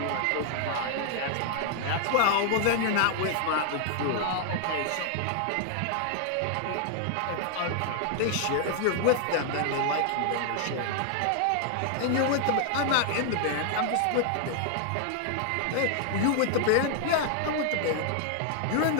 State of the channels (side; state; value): both; different; correlation 0.00